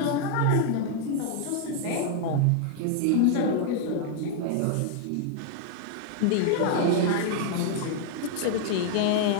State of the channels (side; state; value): both; different; correlation 0.00